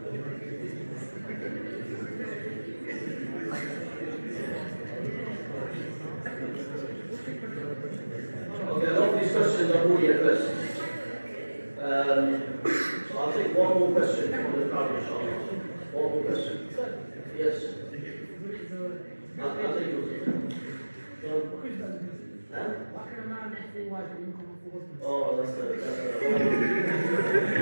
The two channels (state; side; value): inverted; both; correlation -1.00